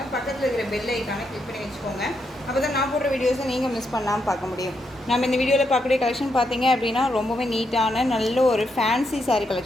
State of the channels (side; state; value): both; normal; correlation 0.80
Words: பக்கத்தில் இருக்கிற பெல் ஐக்கானை கிளிக் பண்ணி வச்சுக்கோங்க. அப்போ தான் நான் போடுற வீடியோஸை நீங்கள் மிஸ் பண்ணாமல் பார்க்க முடியும். நம்ம இந்த வீடியோவில் பார்க்கக்கூடிய கலெக்ஷன் பார்த்தீங்க அப்படின்னா ரொம்பவே நீட்டான நல்ல ஒரு ஃபேன்சி சாரீ